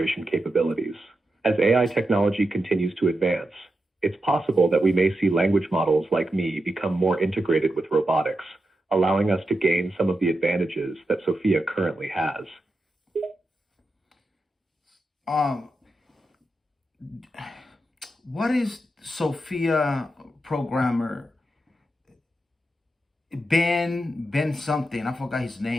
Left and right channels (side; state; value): both; normal; correlation 0.88